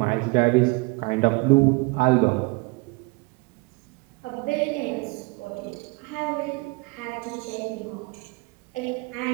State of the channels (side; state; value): left; quieter; 26.6 dB